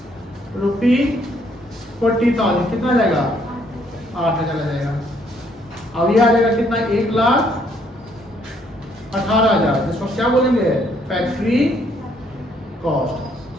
₹40,000 कितना आ जाएगा? 8,000 आ जाएगा। अब ये आ जाएगा कितना? 1,18,000। इसको क्या बोलेंगे? Factory cost.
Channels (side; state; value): both; normal; correlation 0.68